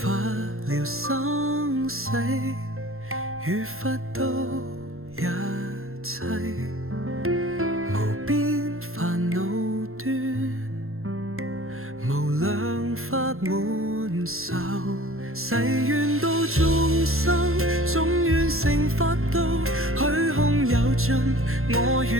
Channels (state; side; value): late; left; 0.62 ms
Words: 了生死，與佛都一切，無邊煩惱端，無量法滿受。誓願度眾生，總願成佛道。虛空有盡，我